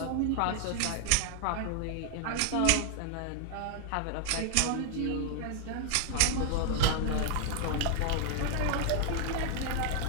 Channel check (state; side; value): different; both; correlation 0.00